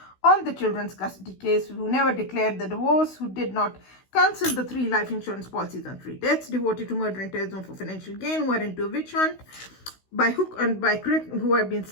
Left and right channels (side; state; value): right; late; 16 ms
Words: on the children's custody case, who never declared the divorce, who did not cancel the 3 life insurance policies on 3 deaths, devoted to murder and terrorism for financial gain, who are into a witch hunt by hook and by crook, who have been